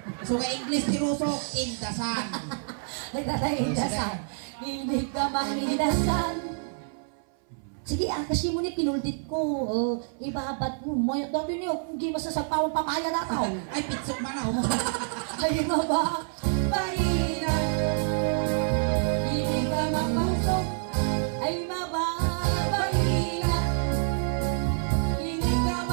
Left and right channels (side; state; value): left; silent; 60 dB below the other